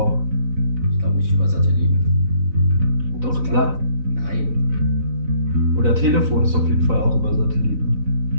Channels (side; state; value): left; late; 4.0 ms